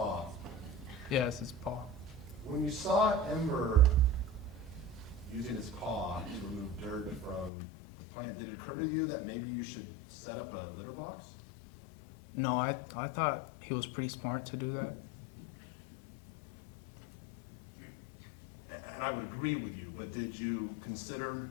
Yes, it's paw. When you saw Ember using its paw to remove dirt from the plant, did it occur to you that maybe you should set up a litter box? No, I thought he was pretty smart to do that. And I would agree with you, but did you consider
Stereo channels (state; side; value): drops out; right; at 7.5 s